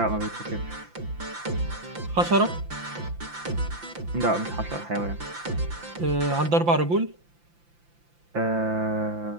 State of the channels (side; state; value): left; late; 5.8 ms